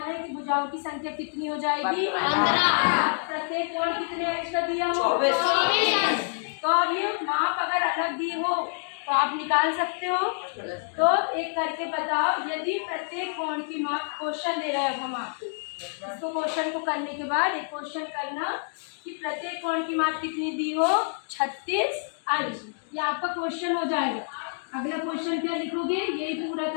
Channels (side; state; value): right; silent; digital silence